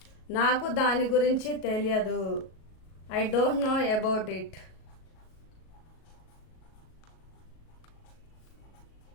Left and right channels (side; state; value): right; late; 37 ms